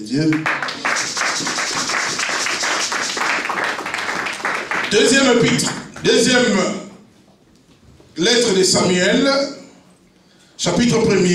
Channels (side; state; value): both; identical; correlation 1.00